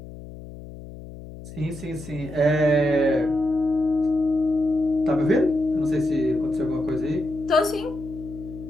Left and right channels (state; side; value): noise; left; hum, 14 dB below the sound